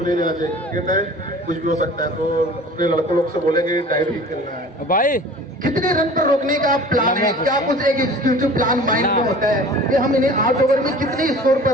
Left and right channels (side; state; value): both; normal; correlation 0.43